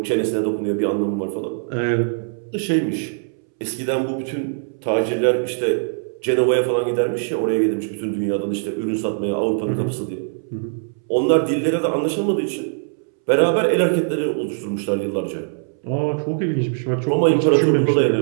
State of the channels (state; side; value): silent; left; 65 dB below the other